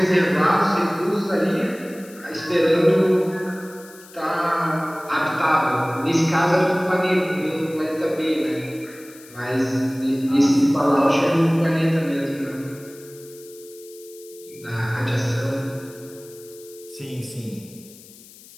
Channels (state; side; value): noise; left; hiss, 21 dB below the sound